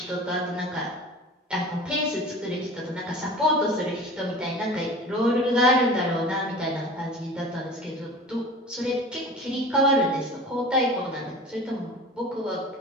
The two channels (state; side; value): normal; both; correlation 0.39